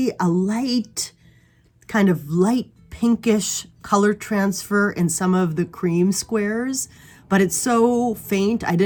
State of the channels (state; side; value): identical; both; correlation 1.00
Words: a light pinkish color transfer in some of the cream squares, but it's so faint I